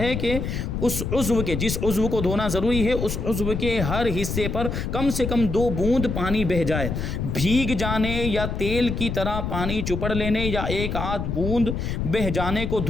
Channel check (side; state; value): left; noise; rumble, 3 dB below the sound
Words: کہ اس عضو کے، جس عضو کو دھونا ضروری ہے، اس عضو کے ہر حصے پر کم سے کم 2 بوند پانی بہہ جائے۔ بھیگ جانے یا تیل کی طرح پانی چپڑ لینے یا 1 آدھ بوند بہہ جانے کو